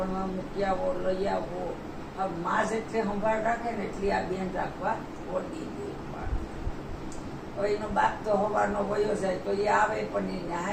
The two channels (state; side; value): identical; both; correlation 1.00